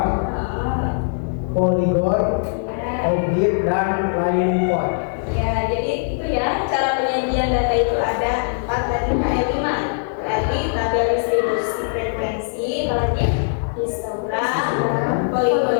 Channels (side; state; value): right; silent; 65 dB below the other